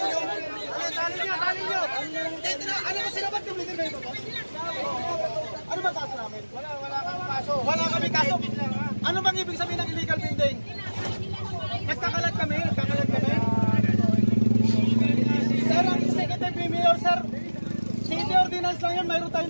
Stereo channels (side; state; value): both; inverted; correlation -1.00